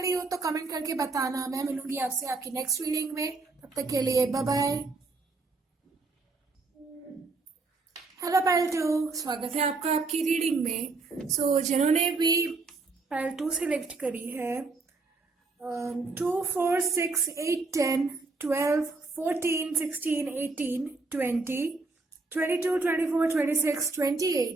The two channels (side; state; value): left; quieter; 3.7 dB